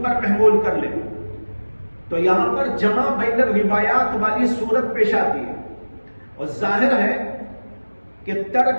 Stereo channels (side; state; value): both; inverted; correlation -1.00